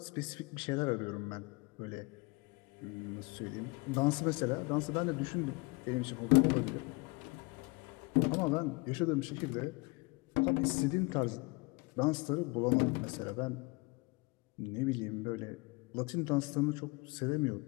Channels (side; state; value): right; quieter; 27.0 dB